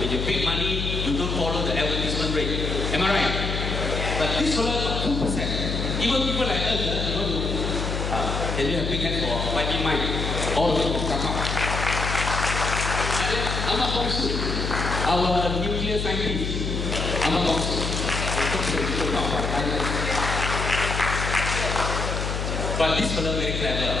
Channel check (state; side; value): noise; left; hum, 2 dB below the sound